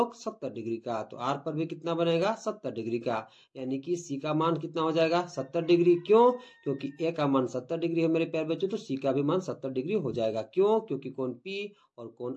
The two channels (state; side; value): identical; both; correlation 1.00